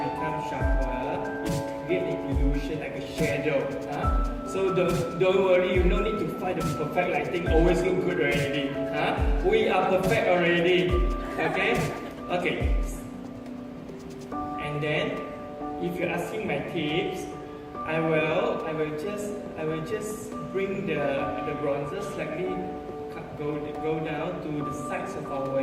becomes sharper. It creates an illusion like a shadow. So don't worry, you don't need to find the perfect lighting. Always look good already. We are perfect already. Okay. And then, if you're asking my tips, I will just bring the bronzer slightly go down to the sides of our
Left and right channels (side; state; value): both; identical; correlation 1.00